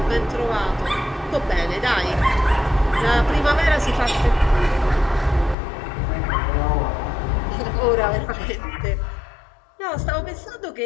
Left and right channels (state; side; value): drops out; right; at 5.6 s